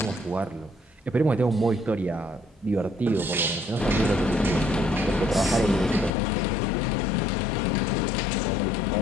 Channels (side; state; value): right; drops out; at 6.1 s